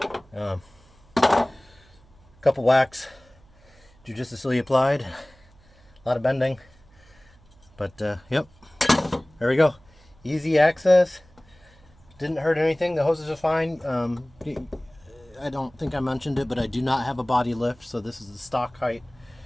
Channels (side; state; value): right; noise; hum, 28 dB below the sound